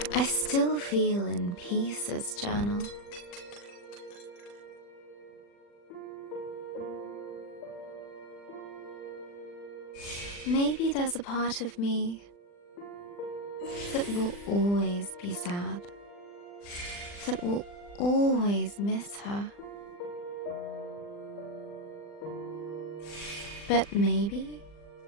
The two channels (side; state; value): right; late; 40 ms